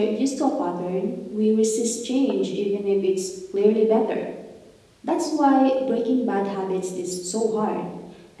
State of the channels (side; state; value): both; identical; correlation 1.00